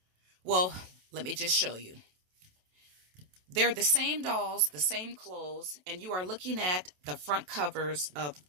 Well, let me just show you. They're the same dolls, the same clothes, and you are looking at the front covers of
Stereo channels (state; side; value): late; left; 27 ms